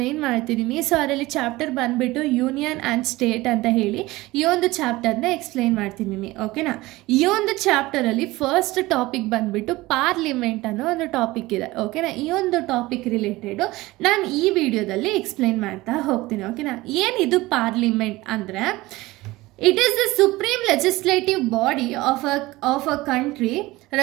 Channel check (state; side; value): quieter; left; 19.5 dB